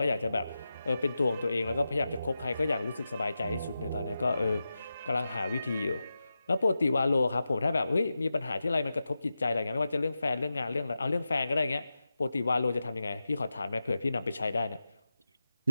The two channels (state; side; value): inverted; both; correlation -0.92